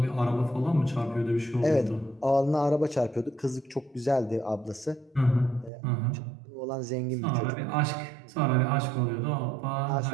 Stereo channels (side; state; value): left; drops out; at 5.7 s